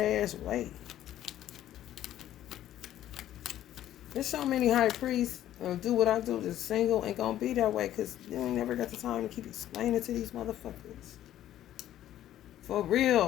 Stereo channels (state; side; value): quieter; right; 12.4 dB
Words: way. There's so many high priests do what I do, just single, ain't gonna be that way because you ain't never got the time to keep explaining to these motherfuckers. For